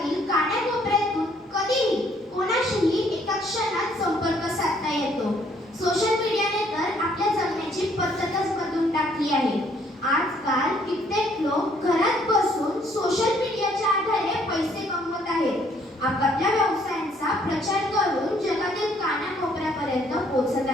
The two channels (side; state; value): both; normal; correlation 0.65